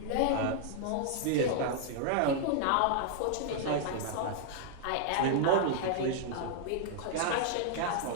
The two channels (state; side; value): different; both; correlation -0.01